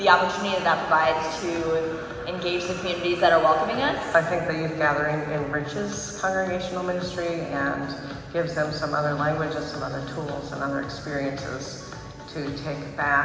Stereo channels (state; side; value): identical; both; correlation 1.00